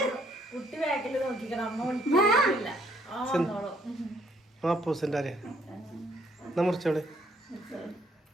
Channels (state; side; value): normal; both; correlation 0.67